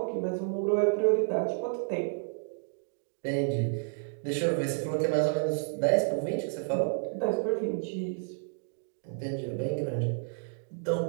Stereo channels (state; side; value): silent; left; digital silence